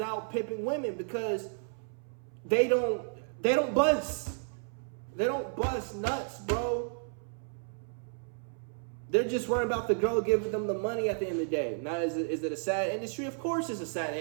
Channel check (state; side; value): silent; left; 56 dB below the other